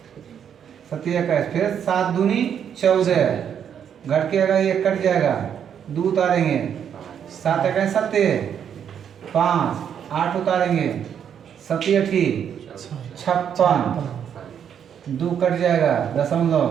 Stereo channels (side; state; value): left; quieter; 8.5 dB